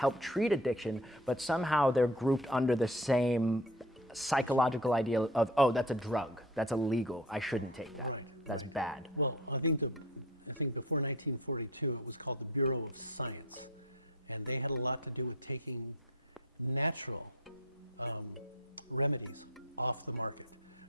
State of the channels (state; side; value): normal; both; correlation 0.38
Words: treat addiction, but somehow they're grouped under the same psychological idea of, oh, that's a drug, that's illegal, I shouldn't take that. Right, That's right. bad. Well, I think before 1942, it was called the Bureau of Science, and they had a lot to do with taking natural remedies off the market.